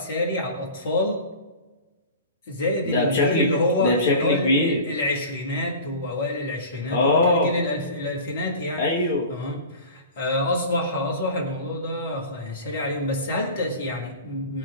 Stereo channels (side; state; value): both; inverted; correlation -0.36